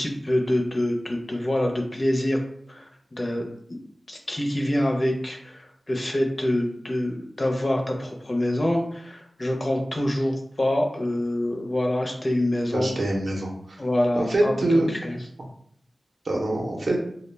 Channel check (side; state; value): both; normal; correlation 0.97